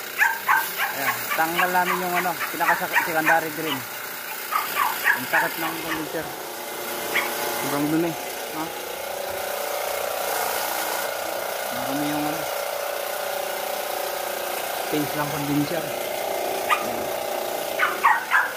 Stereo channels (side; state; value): both; identical; correlation 1.00